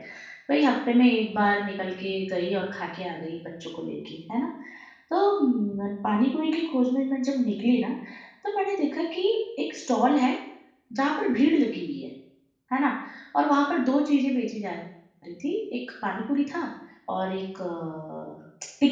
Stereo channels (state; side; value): identical; both; correlation 1.00